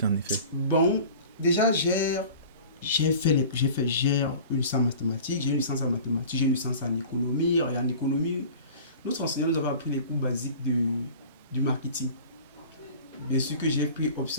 en effet? Bon, déjà, j'ai une licence en mathématiques, j'ai une licence en mathématiques, j'ai une licence en économie. Et en économie, notre enseignant nous avait appris les cours basiques du marketing. Bien sûr que j'ai pris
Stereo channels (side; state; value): both; inverted; correlation -0.41